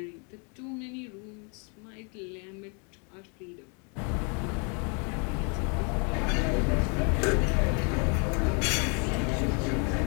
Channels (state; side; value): quieter; right; 35.6 dB